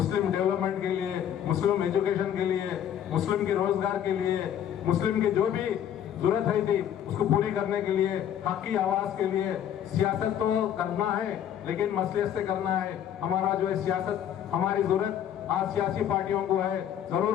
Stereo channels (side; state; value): right; quieter; 9.9 dB